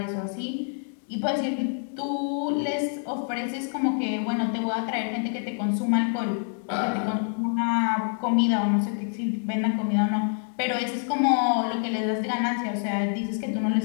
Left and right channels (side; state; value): right; silent; 60 dB below the other